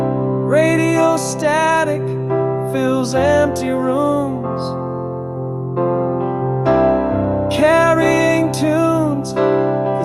Radio static fills empty rooms, carrying tunes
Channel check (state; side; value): identical; both; correlation 1.00